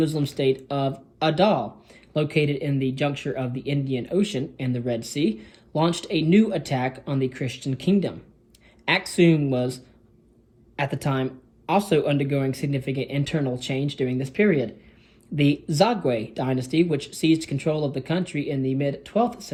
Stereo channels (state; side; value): identical; both; correlation 1.00